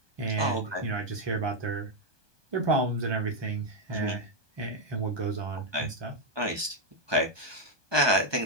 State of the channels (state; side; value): late; left; 1.2 ms